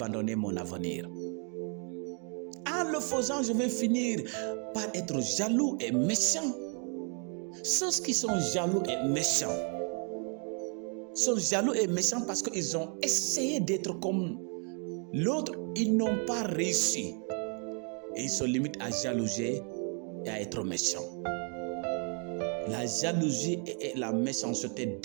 mon avenir. En le faisant, je vais finir par être jaloux et méchant. Ceux qui sont jaloux et méchants sont jaloux et méchants parce qu'ils ont essayé d'être comme l'autre, ils n'ont pas réussi. Et ils se limitent à jalouser et à être méchants. La jalousie et la méchanceté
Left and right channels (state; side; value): quieter; left; 40.0 dB